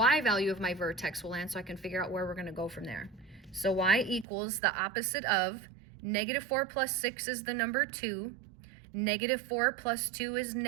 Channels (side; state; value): left; drops out; at 4.2 s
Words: value of my vertex will land so I can figure out where we're going to go from there. So y equals the opposite of -4 plus 6 is the number 2. -4 plus 2 is